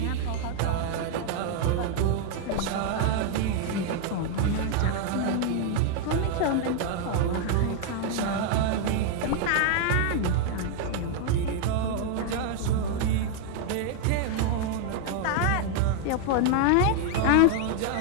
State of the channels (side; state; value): both; different; correlation 0.00